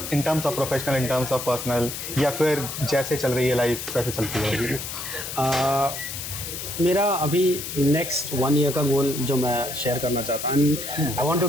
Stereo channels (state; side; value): noise; left; hiss, 7 dB below the sound